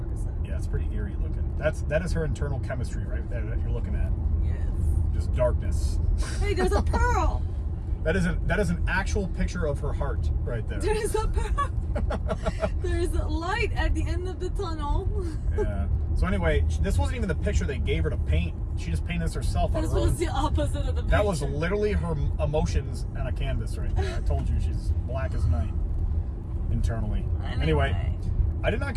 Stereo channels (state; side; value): identical; both; correlation 1.00